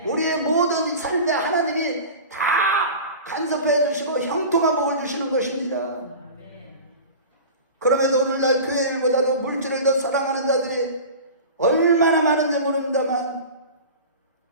우리의 모든 삶에 하나님이 다 간섭해 주시고 형통한 복을 주시는 것입니다. 그럼에도 오늘날 교회 일보다도 물질을 더 사랑하는 자들이 얼마나 많은지 모릅니다만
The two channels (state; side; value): inverted; both; correlation -0.35